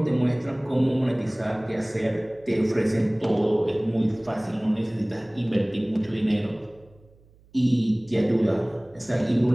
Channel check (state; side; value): noise; right; hum, 29 dB below the sound